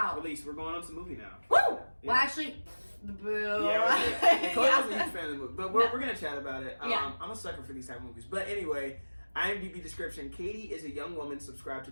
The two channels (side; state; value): both; inverted; correlation -1.00